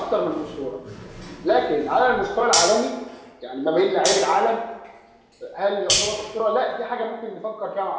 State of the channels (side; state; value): both; identical; correlation 1.00